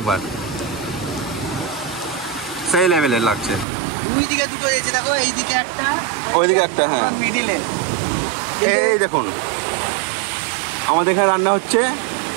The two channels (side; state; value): left; drops out; at 3.7 s